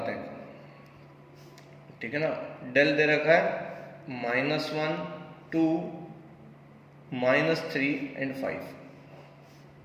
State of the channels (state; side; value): identical; both; correlation 1.00